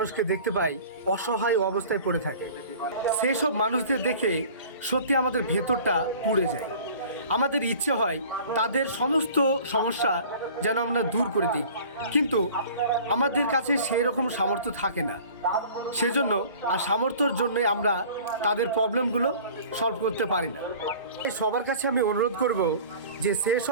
দেখতে পাই অসহায় অবস্থায় পড়ে থাকে। সেসব মানুষদের দেখে সত্যি আমাদের ভেতরটা পুড়ে যায়। আমাদের ইচ্ছে হয় তাদের সমস্ত সমস্যা যেন আমরা দূর করে দিই, কিন্তু আমাদের কাছে সেই রকম সামর্থ্য থাকে না। সেজন্য আর সামর্থ্যের জন্যই আমরা তাদের প্রবলেমগুলো সলভ করতে পারি না। তাই সবার কাছে আমি অনুরোধ করব যে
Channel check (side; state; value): both; inverted; correlation -0.45